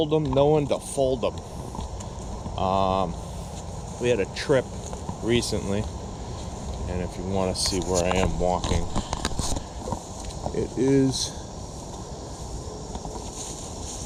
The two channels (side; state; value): both; identical; correlation 1.00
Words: them, know when to fold them. We had a trip recently, and if you want to see where I am walking, it is